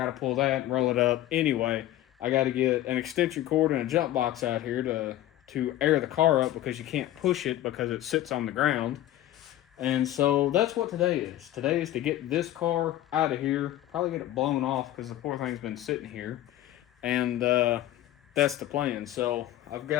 to pull that and roll it up. Anyway, I got to get an extension cord and a jump box out here to air the car up, because you can't push it because it sits on the ground. And so that's what today is. Today is to get this car out of here, probably get it blown off because the poor thing's been sitting here. And that's the plan. So I've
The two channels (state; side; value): quieter; right; 13.7 dB